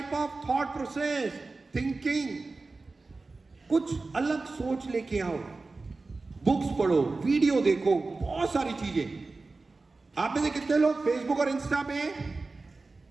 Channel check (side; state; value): left; quieter; 3.6 dB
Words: of thought process, thinking. कुछ अलग सोच लेके आओ, बुक्स पढ़ो, वीडियो देखो, बहुत सारी चीजें। आप में से कितने लोग फेसबुक और इंस्टा पे हैं?